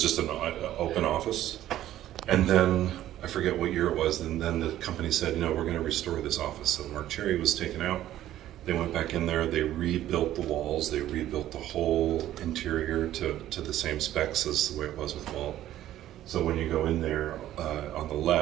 just an open office. And then, I forget what year it was, and then the company said, we're going to restore this office. So Mark Cherry was taken out. They went back in there, they rebuilt the walls, they rebuilt the whole interior to the same specs as the way it was with Walt. So when you go in there, on the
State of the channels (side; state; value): left; quieter; 13.1 dB